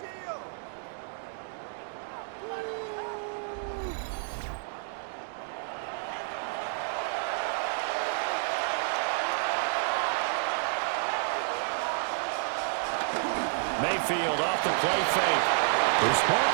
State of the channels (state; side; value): silent; left; digital silence